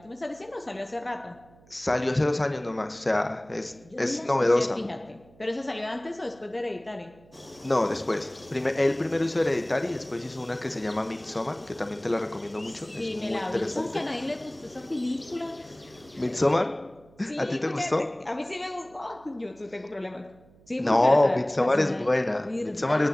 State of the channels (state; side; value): noise; right; hum, 27 dB below the sound